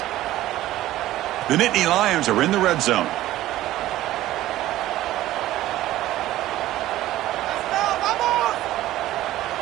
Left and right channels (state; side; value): quieter; left; 15.0 dB